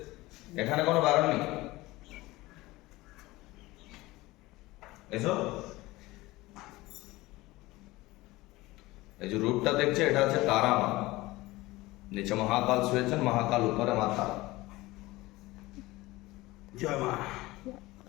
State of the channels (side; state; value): right; quieter; 19.6 dB